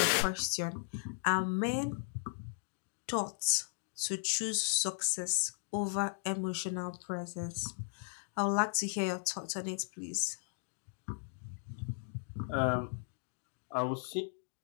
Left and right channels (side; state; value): right; silent; digital silence